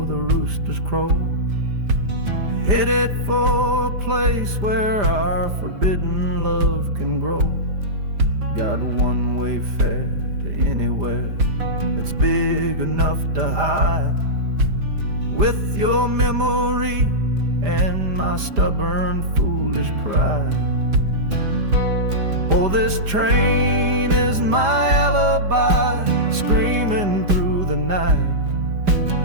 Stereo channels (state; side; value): late; left; 5.0 ms